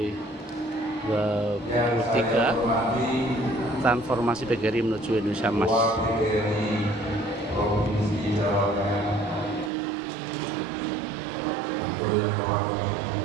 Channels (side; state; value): left; drops out; at 9.7 s